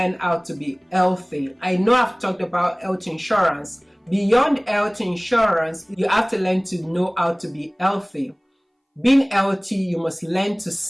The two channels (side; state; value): both; identical; correlation 1.00